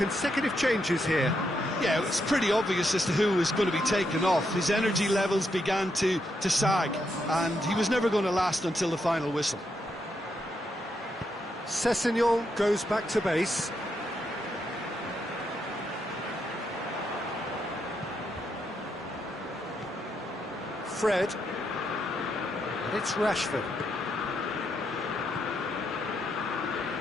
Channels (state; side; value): normal; both; correlation 0.80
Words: changes here. Yeah, it's pretty obvious as to who was going to be taken off. His energy levels began to sag, and he was never going to last until the final whistle. Sessegnon goes back to base. Fred. And it's Rashford.